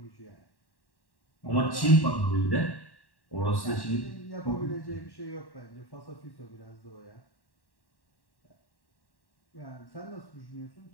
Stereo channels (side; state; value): right; late; 1.1 ms